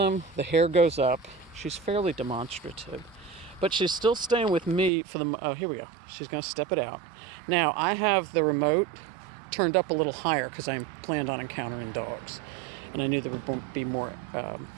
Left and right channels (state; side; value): drops out; left; at 4.9 s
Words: The hair goes up. She's fairly demonstrative, but she's still staying with me for the, here we go. She's going to step it out. Now, I have the remote turned up a little higher because I planned on encountering dogs, and I knew there would be more